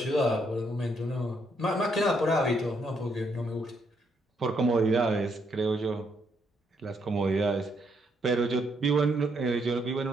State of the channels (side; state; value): both; normal; correlation 0.74